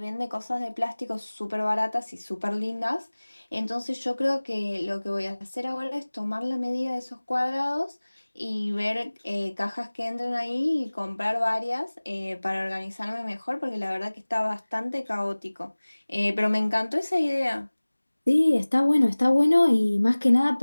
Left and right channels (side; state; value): both; inverted; correlation -1.00